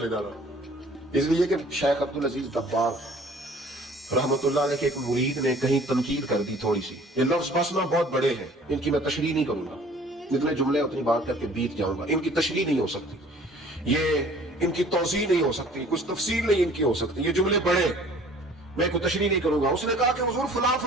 جانا. اس لیے کہ شیخ عبدالعزیز دباغ رحمت اللہ علیہ کے ایک مرید نے کہیں تنقید کر دی تھوڑی سی. یہ لفظ بس نا بہت بڑے ہیں، ان کی میں تشریح نہیں کروں گا، جتنے جملے اتنی بات کر کے بیت جاؤں گا. ان کی تشریح نہیں ہو سکتی، یہ ان کی توضیح نہیں ہو سکتی، کچھ تفصیل نہیں ان کی ہو سکتی. یہ جملے بڑے، میں کوئی تشریح نہیں کروں گا. اس نے کہا کہ حضور فلاں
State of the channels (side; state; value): both; normal; correlation 0.52